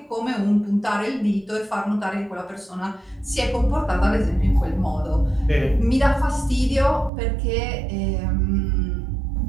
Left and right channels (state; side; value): drops out; left; at 7.1 s